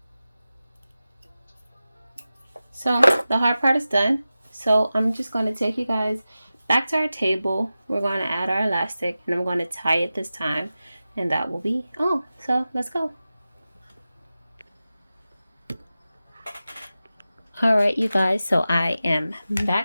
So the hard part is done. So I'm just going to take you guys back to our table. We're going to add our elastic, and I'm going to tie it this time, and that will be all. So let's go. All right, you guys, so I am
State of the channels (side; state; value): both; inverted; correlation -0.94